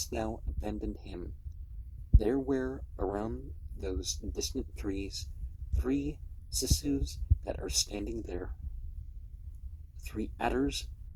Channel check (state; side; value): identical; both; correlation 1.00